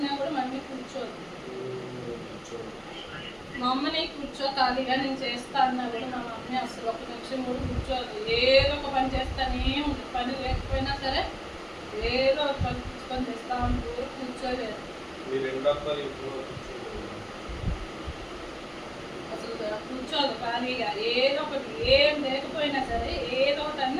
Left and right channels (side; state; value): both; identical; correlation 1.00